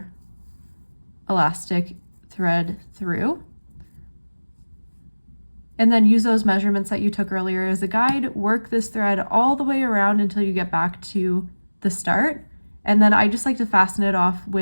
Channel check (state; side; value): inverted; both; correlation -1.00